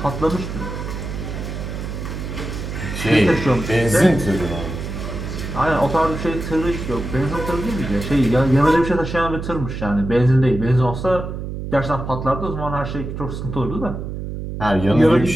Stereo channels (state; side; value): noise; right; hum, 6 dB below the sound